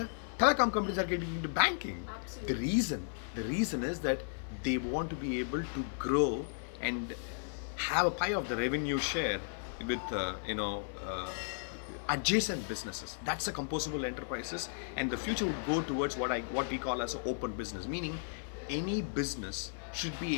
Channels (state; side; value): silent; right; digital silence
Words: telecom companies are getting into banking. Absolutely. The reason is that they want to be able to grow and have a pie of the revenue share with adjacent businesses. That's the composable enterprises, and the future would go towards what we call as an open business, meaning any business should